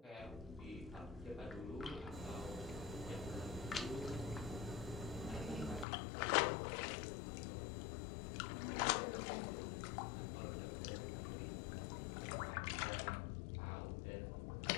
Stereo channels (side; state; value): right; drops out; at 5.9 s